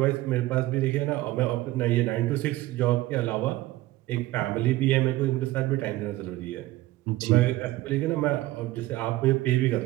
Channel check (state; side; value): quieter; left; 17.2 dB